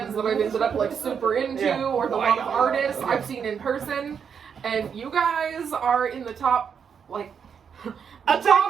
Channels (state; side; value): quieter; left; 7.0 dB